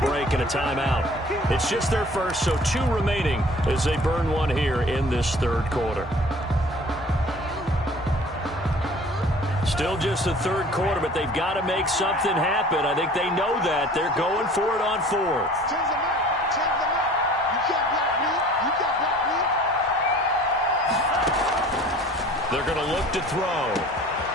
break and a timeout. It's just their first, so 2 remaining as they burn one here in this third quarter. Still just the third quarter, but they've got to make something happen. I think they know that. They're going for it on 4th. They're going to look to throw.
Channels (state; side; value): normal; both; correlation 0.48